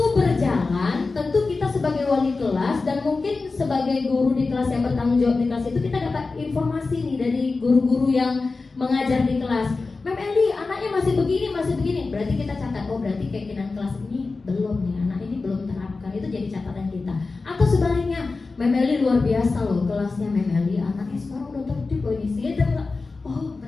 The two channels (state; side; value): quieter; right; 3.9 dB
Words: berjalan tentu kita sebagai wali kelas dan mungkin sebagai guru di kelas yang bertanggung jawab di kelas itu, kita dapat informasi nih dari guru-guru yang mengajar di kelas. Mem Eli, anaknya masih begini. Berarti kita catat, oh berarti keyakinan kelas ini belum nih, anak ini belum terapkan. Itu jadi catatan kita. Atau sebaliknya, Mem Eli luar biasa loh kelasnya Mem Eli, anaknya sekarang udah tertib loh ini. Oh